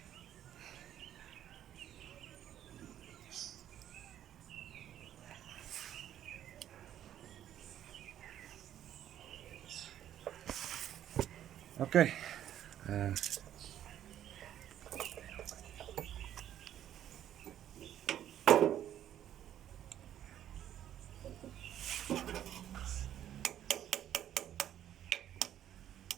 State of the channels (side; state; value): left; quieter; 11.1 dB